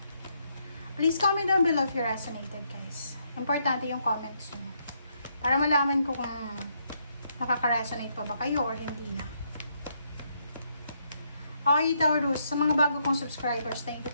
Please comment down below if you resonated, guys. Importante yung comments nyo para malaman ko kung nakaka-resonate pa ba kayo or hindi na. Okay, Taurus, sa mga bago kong subscribers, thank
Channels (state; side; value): inverted; both; correlation -0.75